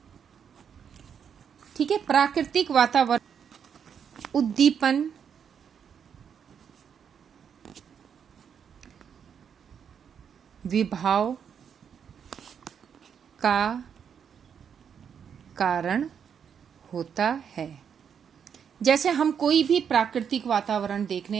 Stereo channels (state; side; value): quieter; left; 7.6 dB